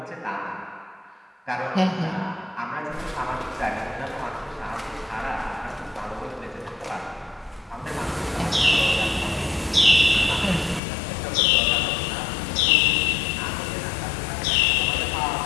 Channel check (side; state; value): right; drops out; at 10.8 s